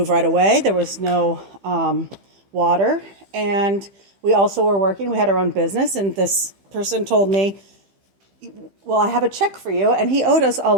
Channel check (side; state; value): left; late; 15 ms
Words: right away. There was no water, and we also were working. We had our own business, and this person told me, well, I have a check for you, and he owed us a